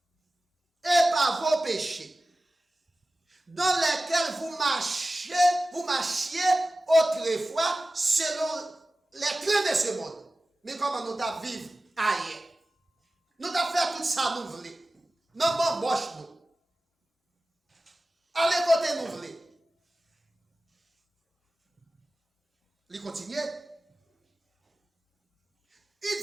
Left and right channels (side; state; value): both; normal; correlation 0.95